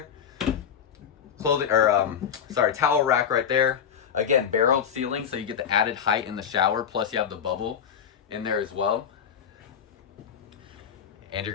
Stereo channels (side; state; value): right; quieter; 8.1 dB